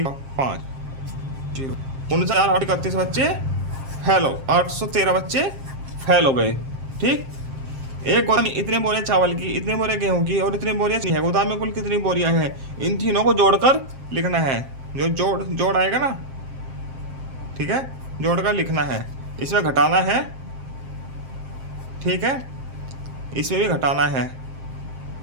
5 0 49 8 31 बच्चे फेल हो, 813 बच्चे फेल हो गए। ठीक, एक गोदाम में इतने बोरे चावल की, इतने बोरे गेहूं की और इतने बोरियां चीनी है। गोदाम में कुल कितनी बोरियां हैं? इन तीनों को जोड़कर लिखना है। जो जोड़ आएगा ना, ठीक है, जोड़कर लिखना है। इसमें घटाना है, ठीक है, इसमें भी घटाना है।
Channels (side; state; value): left; late; 7.5 ms